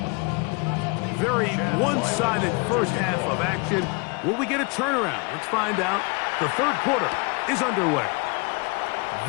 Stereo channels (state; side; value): quieter; right; 30.5 dB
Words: Very one-sided first half of action. Will we get a turnaround? Let's find out. The third quarter is underway.